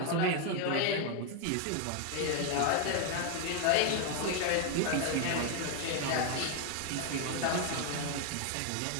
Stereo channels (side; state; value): both; different; correlation 0.01